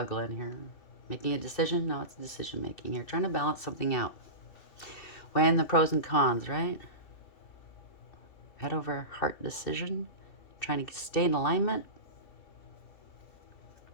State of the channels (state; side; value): late; right; 2.6 ms